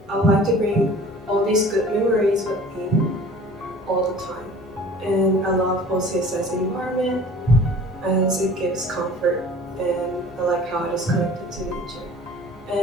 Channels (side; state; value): both; normal; correlation 0.46